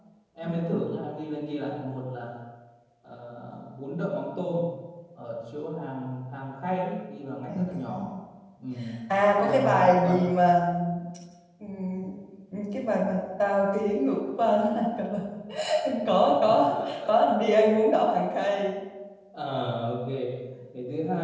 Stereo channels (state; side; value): identical; both; correlation 1.00